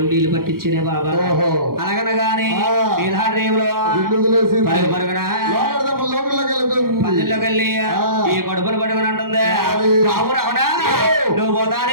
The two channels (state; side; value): late; left; 0.92 ms